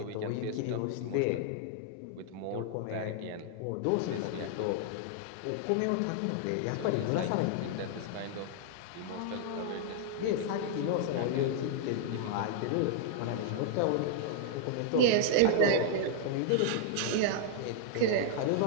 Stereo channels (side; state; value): both; different; correlation -0.01